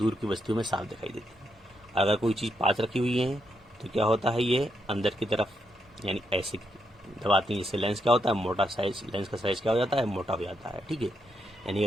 की वस्तुओं में साफ दिखाई देती है। अगर कोई चीज़ पास रखी हुई है तो क्या होता है? ये अंदर की तरफ यानी ऐसे दबाती हैं, जिससे लेंस क्या होता है? मोटा साइज, लेंस का साइज क्या हो जाता है? मोटा हो जाता है। ठीक है, यानी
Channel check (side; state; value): both; normal; correlation 0.80